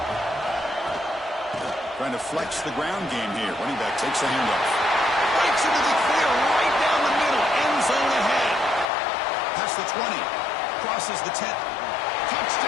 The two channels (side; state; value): right; drops out; at 8.8 s